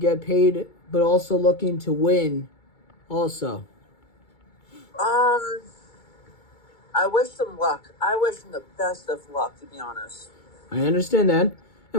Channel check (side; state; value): right; late; 2.2 ms